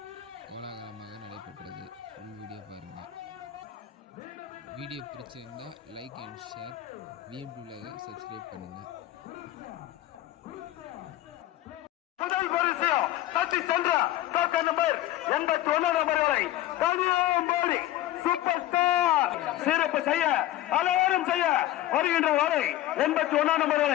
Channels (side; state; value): right; quieter; 14.3 dB